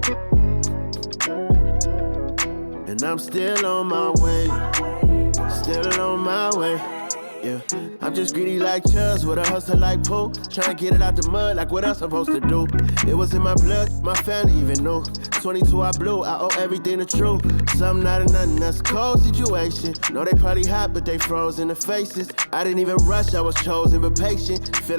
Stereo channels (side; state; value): both; inverted; correlation -1.00